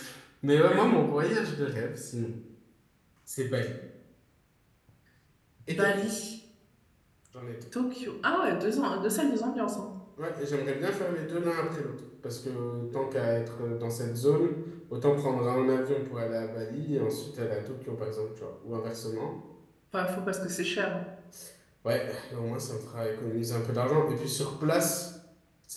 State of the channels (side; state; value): both; identical; correlation 1.00